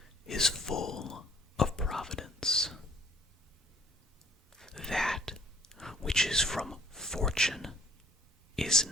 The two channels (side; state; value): both; normal; correlation 0.57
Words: is full of providence. That which is from fortune is